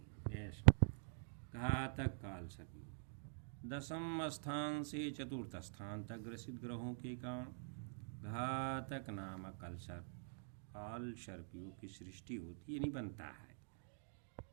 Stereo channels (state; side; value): silent; left; digital silence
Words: हैं। ऐसा घातक काल सर्प योग। 10वें स्थान से 4th स्थान तक ग्रसित ग्रहों के कारण घातक नामक काल सर्प योग की सृष्टि होती है, नहीं बनता है।